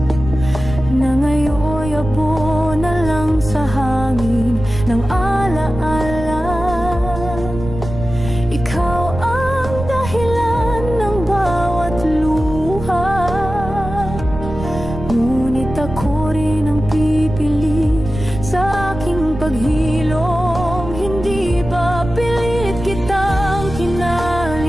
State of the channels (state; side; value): noise; right; rumble, 9 dB below the sound